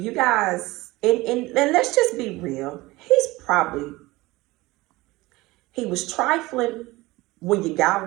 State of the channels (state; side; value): quieter; left; 20.4 dB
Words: guys, and let's just be real, he was trifling when you got